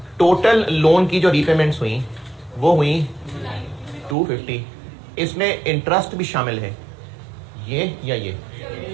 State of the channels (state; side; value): drops out; left; at 4.2 s